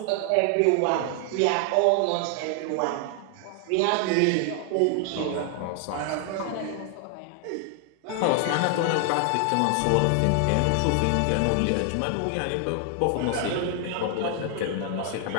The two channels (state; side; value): different; both; correlation 0.00